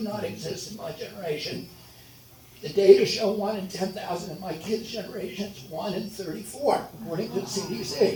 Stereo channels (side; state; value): both; identical; correlation 1.00